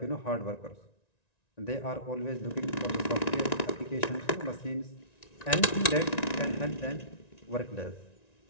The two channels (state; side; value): late; right; 1.9 ms